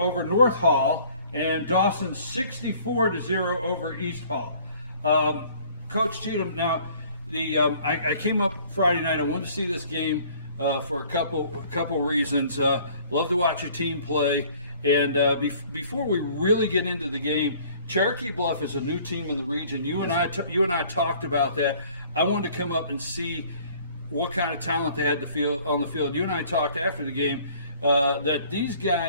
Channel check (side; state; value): both; inverted; correlation -0.55